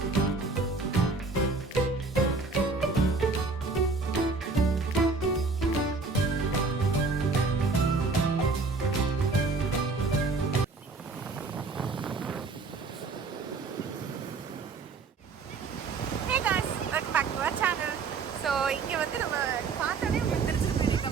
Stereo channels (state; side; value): quieter; left; 4.3 dB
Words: ஸோ இங்கே வந்து நம்ம பார்த்தாலே உங்களுக்கு தெரிஞ்சிருக்கோம்